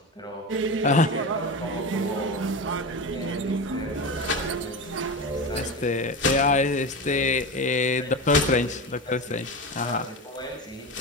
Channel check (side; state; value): both; normal; correlation 0.24